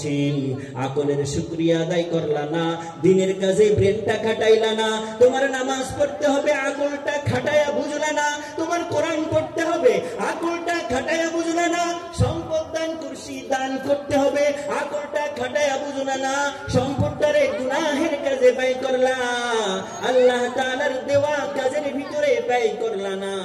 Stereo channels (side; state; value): both; identical; correlation 1.00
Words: আকলের শুকরিয়া আদায় করলা না, দিনের কাজে ব্রেনটা খাটাইলা না, তোমার নামাজ পড়তে হবে আকলটা খাটায়া বুঝলা না, তোমার কোরআন পড়তে হবে আকলটা খাটায়া বুঝলা না, সম্পদ দান করছি দান করতে হবে আকলটা খাটায়া বুঝলা না, সম্পদটারে গুনাহের কাজে ব্যয় করলা, আল্লাহ তাআলার দেওয়া কাজের ভিতরে ব্যয় করলা না,